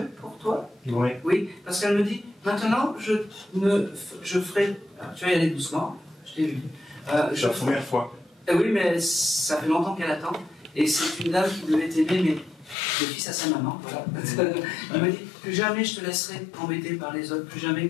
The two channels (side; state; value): right; drops out; at 12.8 s